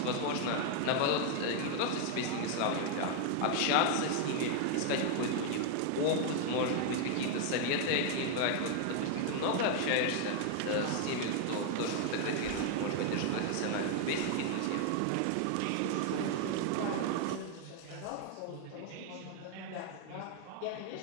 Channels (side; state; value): both; different; correlation 0.00